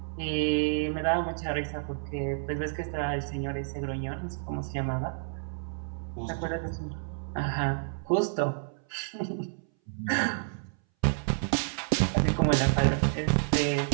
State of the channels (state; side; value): silent; left; 58 dB below the other